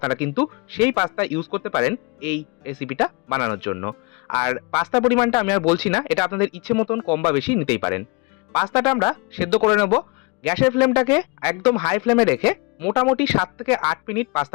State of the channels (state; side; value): quieter; right; 27.5 dB